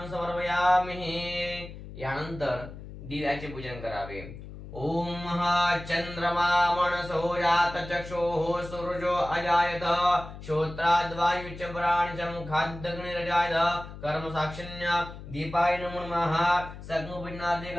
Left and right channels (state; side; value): noise; left; hum, 13 dB below the sound